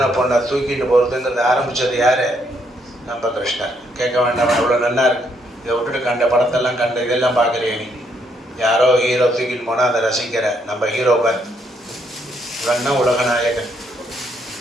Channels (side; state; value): both; normal; correlation 0.73